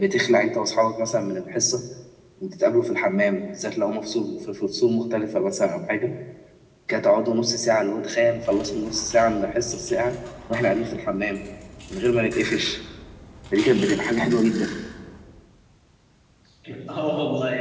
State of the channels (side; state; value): both; identical; correlation 1.00